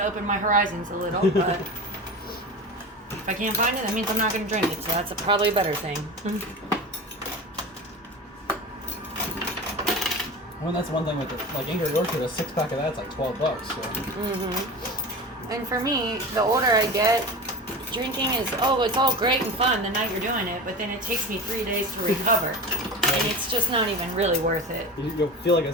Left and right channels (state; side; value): normal; both; correlation 0.30